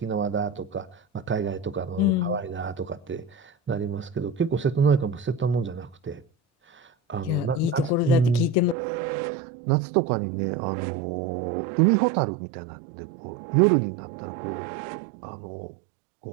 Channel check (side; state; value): left; drops out; at 8.8 s